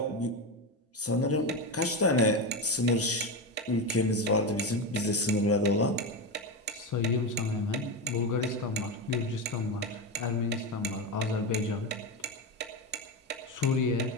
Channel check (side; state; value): both; normal; correlation 0.15